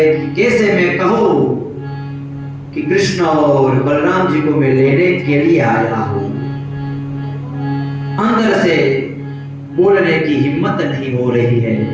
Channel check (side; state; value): both; identical; correlation 1.00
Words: कि कैसे मैं कहूं कि कृष्ण और बलराम जी को मैं लेने के लिए आया हूं। अंदर से बोलने की हिम्मत नहीं हो रही है,